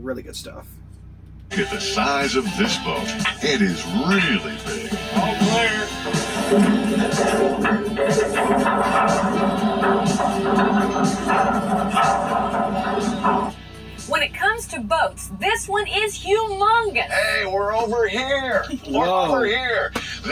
good stuff. Look at the size of this boat. It is really big. All clear. When it comes to boats, this one is humongous. Hey, we're over here. We're Whoa. over here.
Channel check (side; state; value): both; identical; correlation 1.00